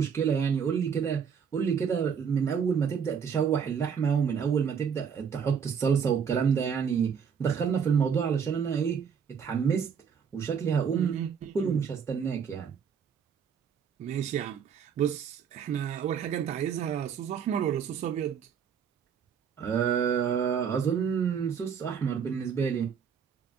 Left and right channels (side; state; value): left; quieter; 7.1 dB